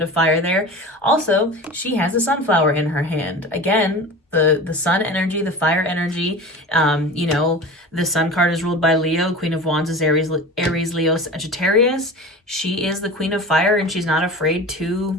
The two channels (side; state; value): both; normal; correlation 0.34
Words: of fire there. Also, she has a sunflower in her hand. Again, the sun energy, the fire energy. You know, the sun card is ruled by Leo. Queen of Wands is Aries, Leo, Sagittarius. She is the Queen of Fire, and she's not afraid